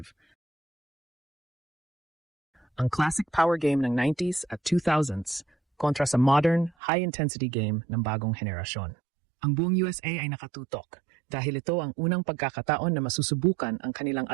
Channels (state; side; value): drops out; left; at 6.7 s